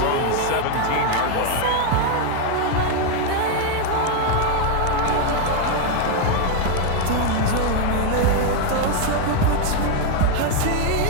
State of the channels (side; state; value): both; different; correlation 0.01